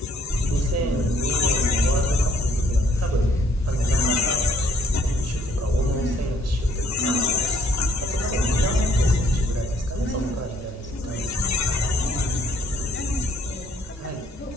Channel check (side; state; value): both; normal; correlation 0.63